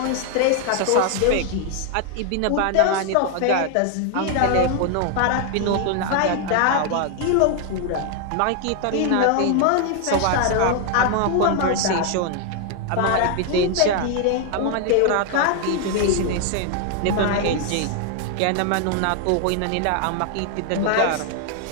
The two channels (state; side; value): different; both; correlation 0.00